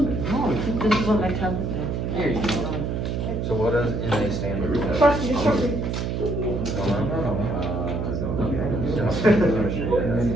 is what my tablet is. There you go. So what does NA stand for? Trust me, trust me.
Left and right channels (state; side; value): noise; right; hum, 2 dB below the sound